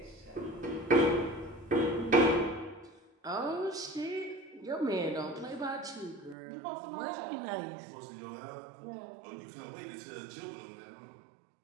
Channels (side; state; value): left; drops out; at 6.4 s